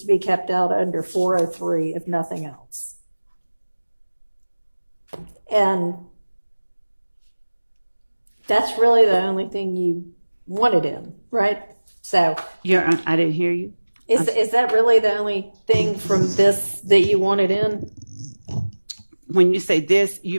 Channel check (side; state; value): both; inverted; correlation -1.00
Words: to be kept out under 403, if nothing else. And that's really the only thing you wanted in, right? So I didn't hear you. is that really the only thing from this that you wanted in? When you say this,